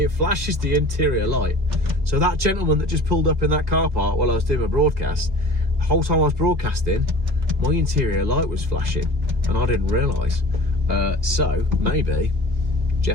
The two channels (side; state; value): left; late; 1.7 ms